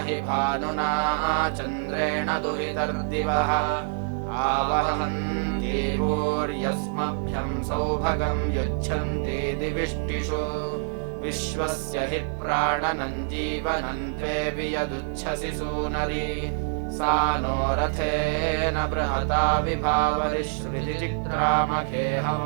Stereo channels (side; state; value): left; silent; digital silence